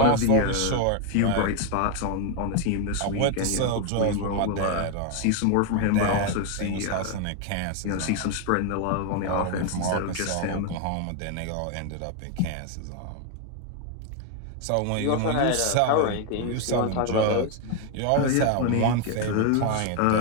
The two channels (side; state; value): both; different; correlation 0.00